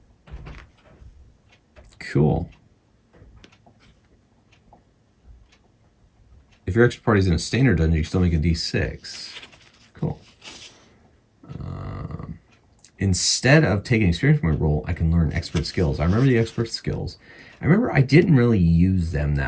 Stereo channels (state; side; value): identical; both; correlation 1.00